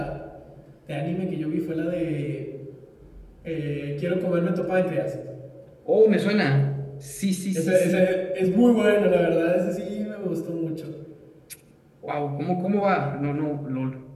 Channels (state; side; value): identical; both; correlation 1.00